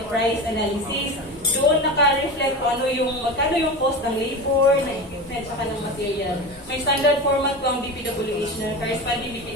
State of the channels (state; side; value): normal; both; correlation 0.27